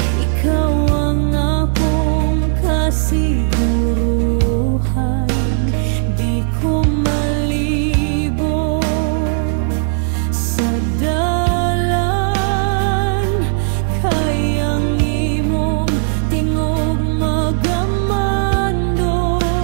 ikaw ang akong kasiguruhan. Di ko malibo sa dalan, kayang imong tingog magamando.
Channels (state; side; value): silent; left; digital silence